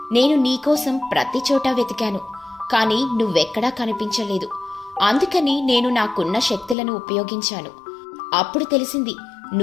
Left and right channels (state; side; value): drops out; right; at 6.8 s